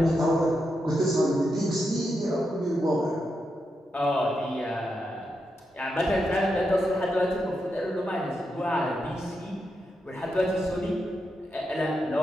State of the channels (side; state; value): both; normal; correlation 0.85